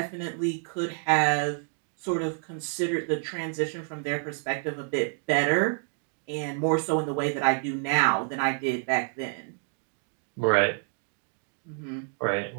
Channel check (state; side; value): silent; left; 56 dB below the other